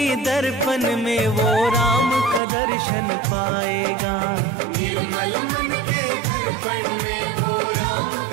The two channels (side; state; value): left; drops out; at 2.4 s